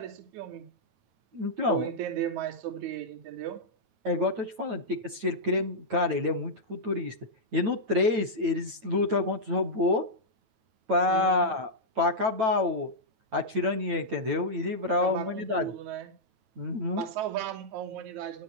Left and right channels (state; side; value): late; left; 9.1 ms